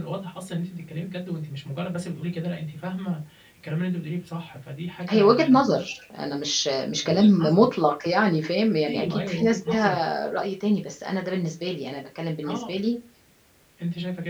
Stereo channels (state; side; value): identical; both; correlation 1.00